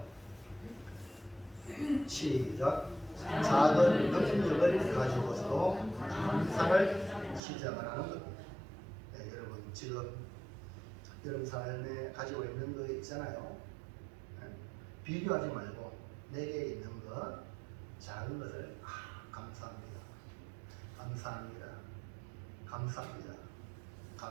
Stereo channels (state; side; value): drops out; left; at 7.4 s